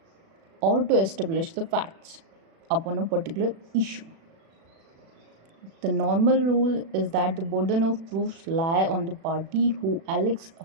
or to establish the facts upon a particular issue. The normal rule is that the burden of proofs lie on the party who alleges a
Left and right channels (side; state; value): left; late; 36 ms